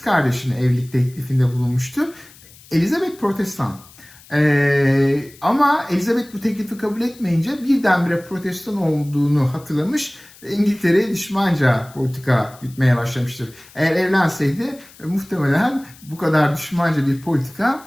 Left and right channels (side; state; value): left; noise; hiss, 23 dB below the sound